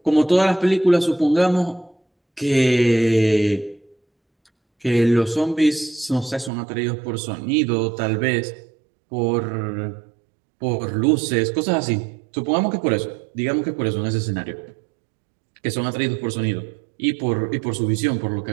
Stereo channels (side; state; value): left; drops out; at 6.5 s